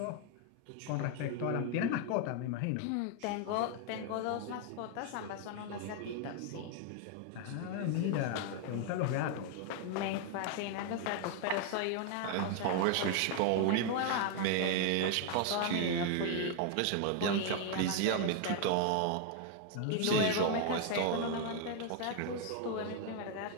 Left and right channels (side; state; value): both; different; correlation 0.00